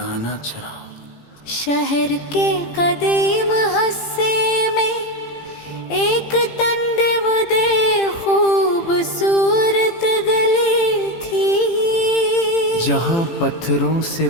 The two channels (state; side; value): late; right; 18 ms